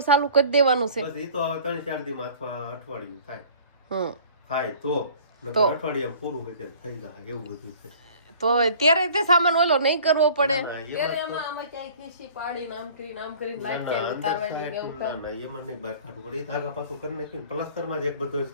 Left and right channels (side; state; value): both; inverted; correlation -0.48